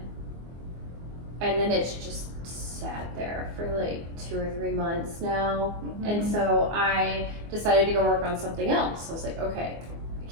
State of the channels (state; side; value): late; left; 24 ms